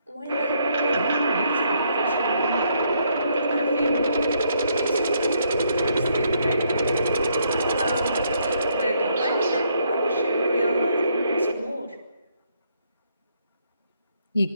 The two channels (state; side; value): inverted; both; correlation -0.72